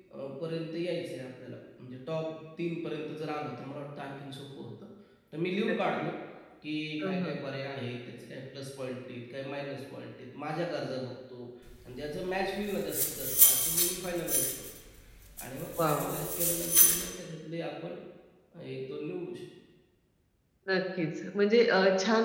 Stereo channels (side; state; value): both; identical; correlation 1.00